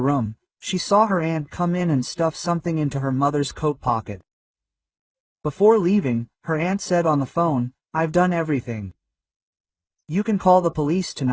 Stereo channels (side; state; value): both; identical; correlation 1.00